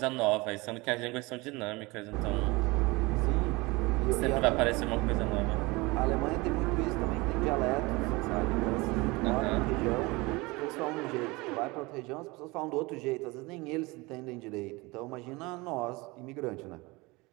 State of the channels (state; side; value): quieter; left; 23.8 dB